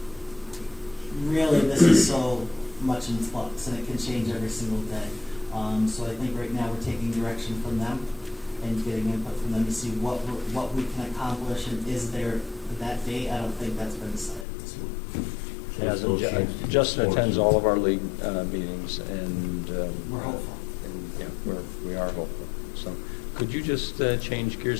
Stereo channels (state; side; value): drops out; right; at 14.5 s